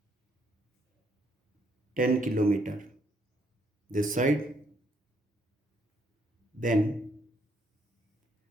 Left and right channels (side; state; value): both; normal; correlation 0.71